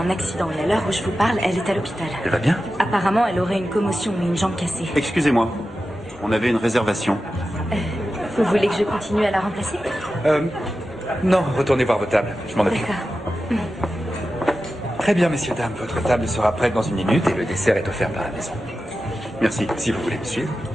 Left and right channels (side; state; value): both; normal; correlation 0.92